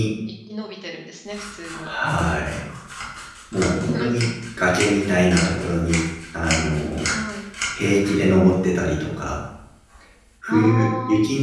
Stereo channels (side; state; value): both; identical; correlation 1.00